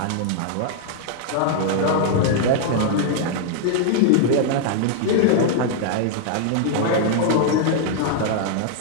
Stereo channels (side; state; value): both; different; correlation -0.01